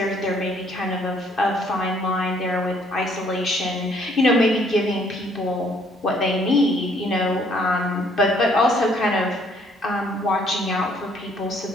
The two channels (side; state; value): both; normal; correlation 0.64